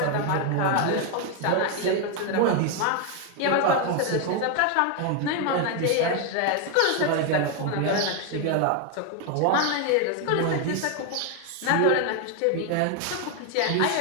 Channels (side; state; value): both; different; correlation 0.01